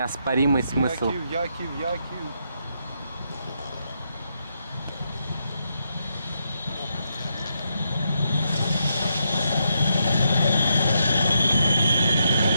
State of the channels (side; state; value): both; inverted; correlation -0.81